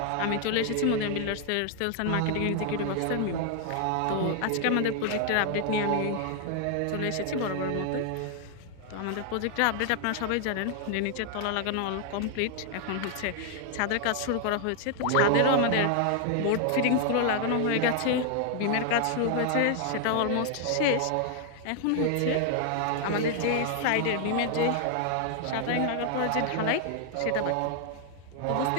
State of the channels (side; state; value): both; different; correlation 0.00